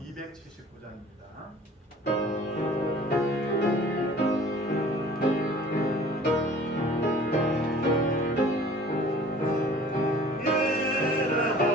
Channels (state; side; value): normal; both; correlation 0.49